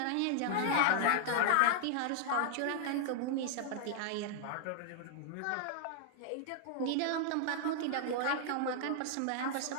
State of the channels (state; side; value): different; both; correlation -0.01